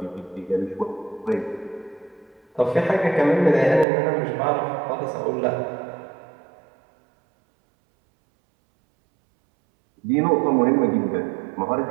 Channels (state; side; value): drops out; left; at 3.9 s